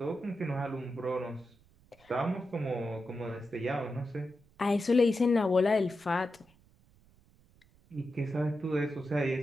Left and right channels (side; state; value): right; noise; rumble, 30 dB below the sound